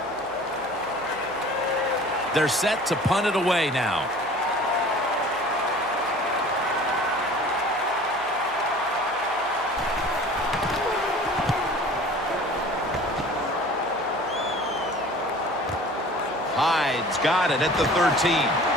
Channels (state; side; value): noise; right; hum, 26 dB below the sound